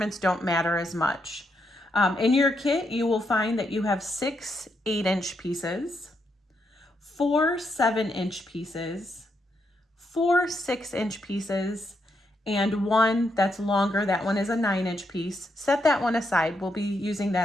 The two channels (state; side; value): normal; both; correlation 0.80